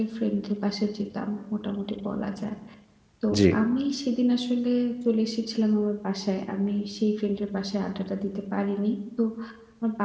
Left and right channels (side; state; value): both; identical; correlation 1.00